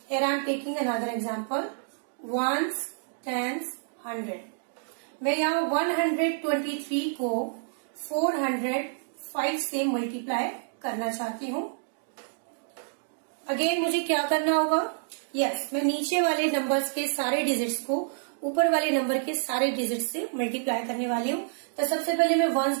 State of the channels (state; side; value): silent; left; digital silence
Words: Here I am taking another example. Ones, tens, 100. मैं यहाँ 123 को 405 से multiply करना चाहती हूँ. Again मुझे क्या करना होगा? यस, मैं नीचे वाले नंबर्स के सारे डिजिट्स को ऊपर वाले नंबर के सारे डिजिट से मल्टीप्लाई करने वाली हूँ। तो सबसे पहले मैं वंस